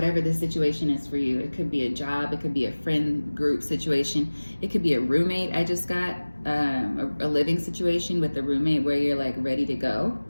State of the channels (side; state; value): both; inverted; correlation -1.00